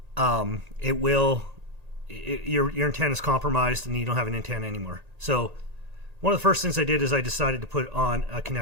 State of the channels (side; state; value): left; late; 1.8 ms